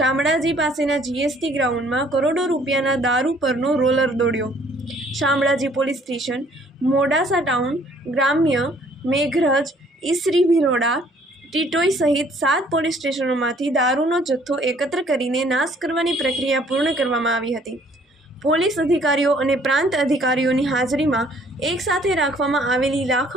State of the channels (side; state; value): both; normal; correlation 0.60